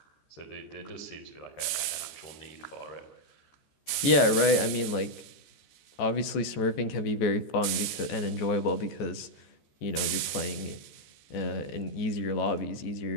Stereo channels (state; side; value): late; right; 13 ms